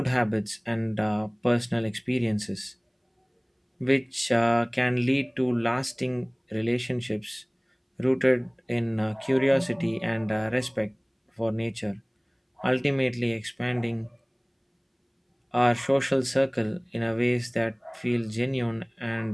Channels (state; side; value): identical; both; correlation 1.00